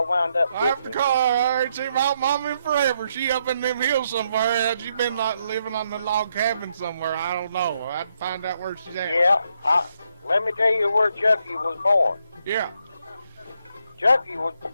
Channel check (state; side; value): inverted; both; correlation -0.78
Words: wound up I have to getting call her. I ain't seen my mom in forever. She up in them hills somewhere. She been like living on the log cabin somewhere. I don't know. I'd find out where she's at. Yeah, let me tell you where Chucky was born. Yeah. Chucky was